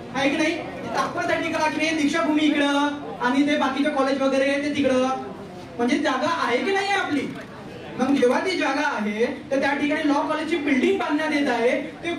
की नाही? तात्पुरती टाकली आहे, दीक्षाभूमी इकडं आणि ते बाकीचे कॉलेज वगैरे ते तिकडं, म्हणजे जागा आहे की नाही आपली? मग जेव्हा ती जागा आहे तर त्या ठिकाणी लॉ कॉलेजची बिल्डिंग बांधण्यात येत आहे ते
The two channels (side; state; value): both; identical; correlation 1.00